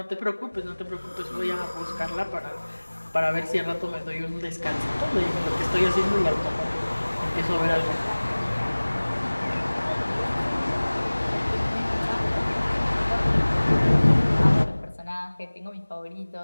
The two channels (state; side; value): inverted; both; correlation -1.00